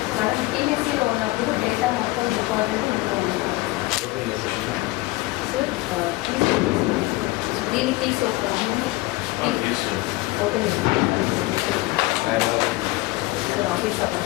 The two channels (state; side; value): quieter; right; 21.1 dB